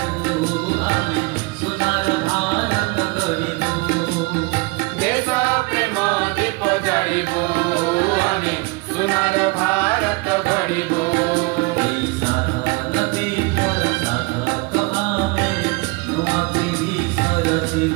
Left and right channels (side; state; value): left; quieter; 26.6 dB